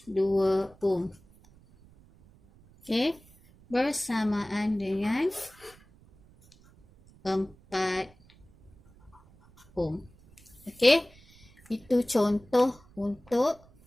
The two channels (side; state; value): right; noise; rumble, 27 dB below the sound